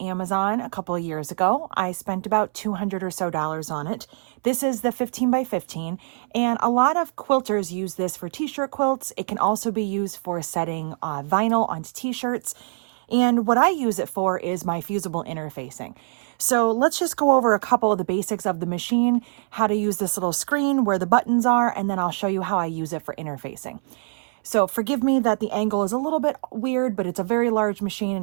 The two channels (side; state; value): left; silent; 63 dB below the other